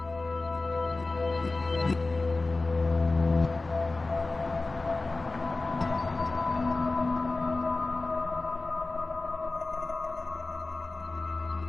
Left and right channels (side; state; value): right; quieter; 3.3 dB